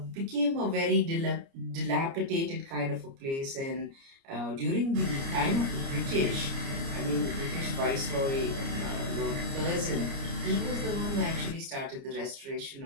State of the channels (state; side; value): late; left; 29 ms